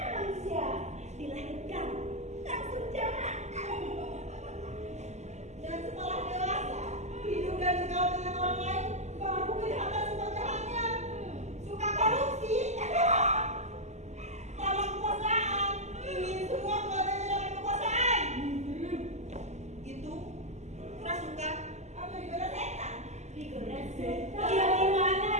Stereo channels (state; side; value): late; left; 0.33 ms